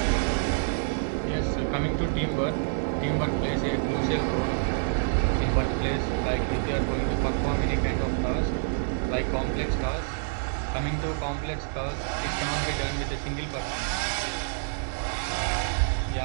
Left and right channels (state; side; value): silent; left; digital silence